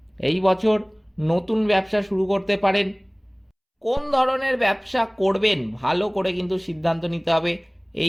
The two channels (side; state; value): both; identical; correlation 1.00